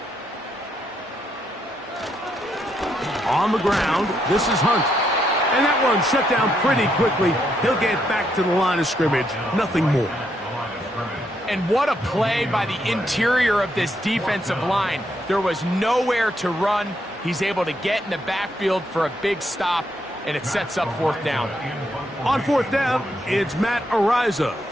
On the ground, this is Hunt. And that one shut down pretty quickly. He'll get back to the line of scrimmage. Nothing more. And what a play by the interior of this defensive line. There was nowhere to run. He's able to get in the backfield for a big stop, and it sets up 4th down. On 4th down, it's Matt Araiza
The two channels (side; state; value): both; normal; correlation 0.77